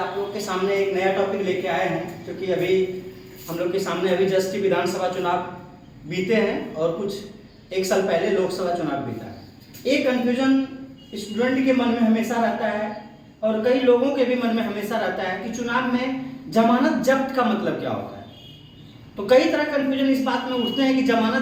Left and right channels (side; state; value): both; identical; correlation 1.00